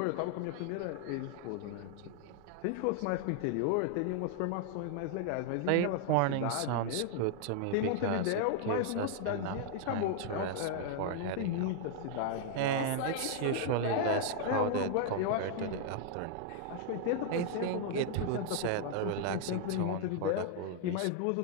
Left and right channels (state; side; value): different; both; correlation 0.00